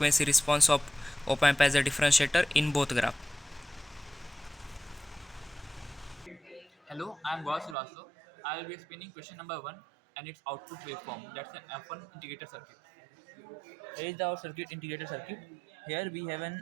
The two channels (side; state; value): left; drops out; at 7.8 s